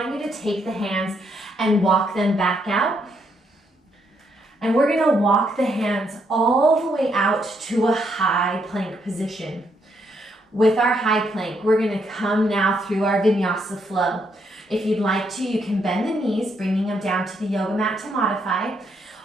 you to take the hands and walk them back out. And we're going to walk the hands all the way out to a high plank position. With our high plank, we're going to come now through our vinyasa flow. If you'd like to, you can bend the knees, bringing them down to the yoga mat to modify,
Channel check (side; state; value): both; normal; correlation 0.75